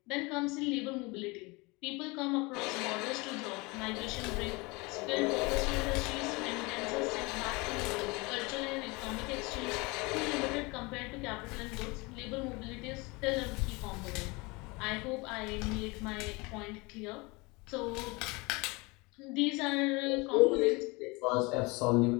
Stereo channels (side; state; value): right; quieter; 25.8 dB